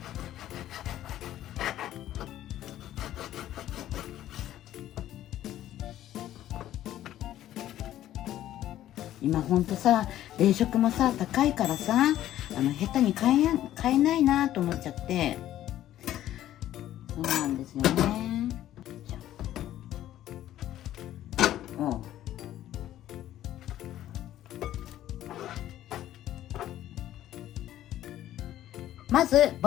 今ほんとさ、冷食もさ高いからさ、下手に買えないなと思っちゃって、そうなんですよね。まず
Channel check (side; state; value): right; quieter; 12.9 dB